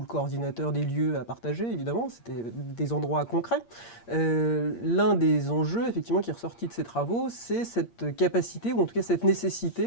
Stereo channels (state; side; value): late; right; 8.6 ms